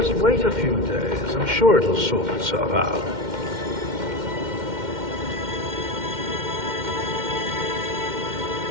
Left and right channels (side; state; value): left; late; 2.1 ms